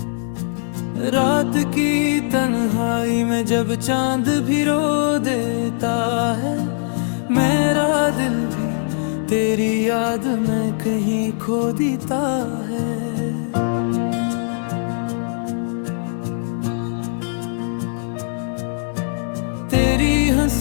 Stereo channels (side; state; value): right; silent; digital silence